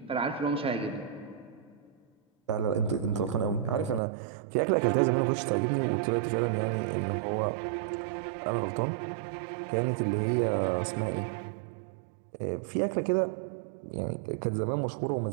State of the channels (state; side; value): drops out; left; at 4.0 s